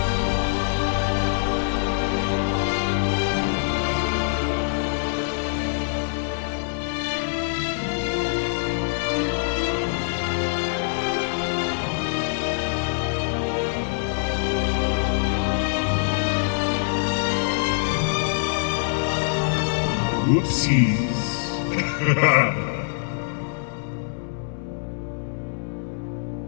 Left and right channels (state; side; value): silent; right; 62 dB below the other